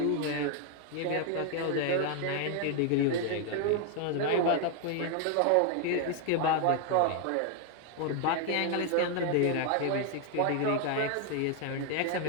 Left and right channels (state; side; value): different; both; correlation 0.00